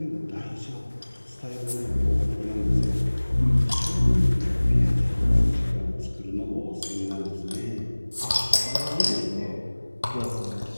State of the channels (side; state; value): both; inverted; correlation -1.00